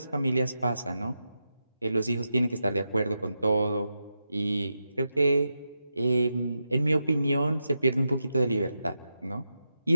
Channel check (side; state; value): both; inverted; correlation -0.87